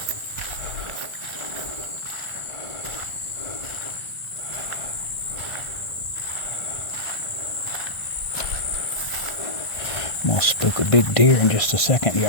I'm gonna spook a big deer in just a second,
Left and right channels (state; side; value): late; right; 1.5 ms